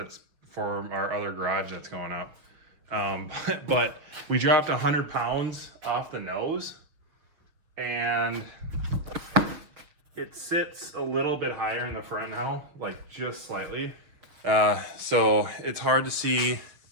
for our other garage that's going up. But we dropped 100 pounds off the nose, and it sits a little bit higher in the front now, like just slightly. So it's hard to see.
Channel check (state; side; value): late; left; 6.5 ms